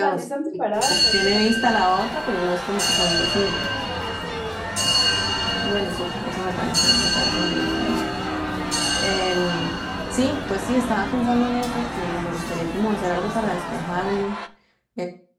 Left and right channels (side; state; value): both; identical; correlation 1.00